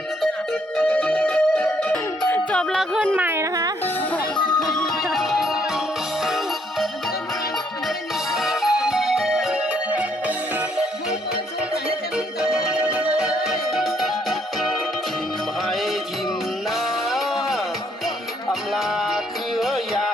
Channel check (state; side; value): normal; both; correlation 0.69